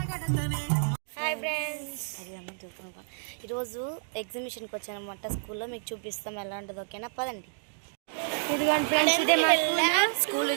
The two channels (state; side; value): silent; left; digital silence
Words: Hi friends, ఈరోజు ఎగ్జిబిషన్కి వచ్చానమాట స్కూల్లో. మీకు చూపిస్తాం ఎలా ఉంటుంది, ఓకేనా? పదండి. ఇదిగోండి ఫ్రెండ్స్, ఇదే మా స్కూల్.